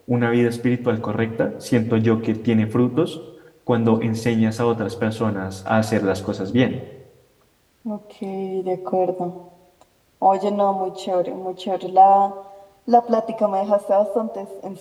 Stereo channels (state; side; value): identical; both; correlation 1.00